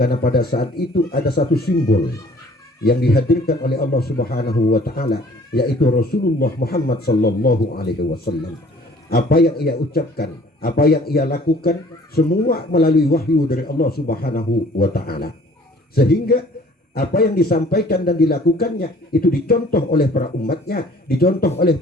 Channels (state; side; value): normal; both; correlation 0.53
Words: pada saat itu ada satu simbol yang dihadirkan oleh Allah Subhanahu wa Ta'ala, yaitu Rasulullah Muhammad Sallallahu Alaihi Wasallam. Apa yang ia ucapkan, apa yang ia lakukan, semua melalui wahyu dari Allah Subhanahu wa Ta'ala. Sehingga apa yang disampaikan dan dilakukannya itu dicontoh oleh para umatnya, dicontoh oleh